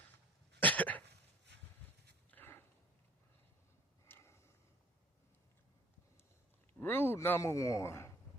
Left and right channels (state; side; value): normal; both; correlation 0.52